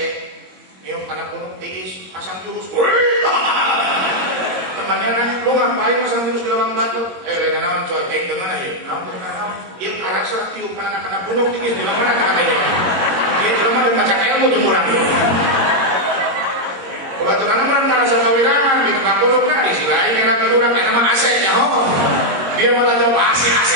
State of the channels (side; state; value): left; late; 22 ms